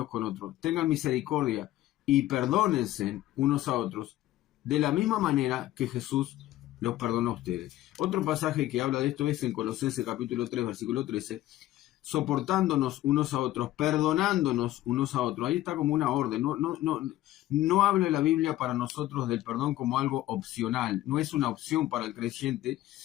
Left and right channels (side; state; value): right; quieter; 14.9 dB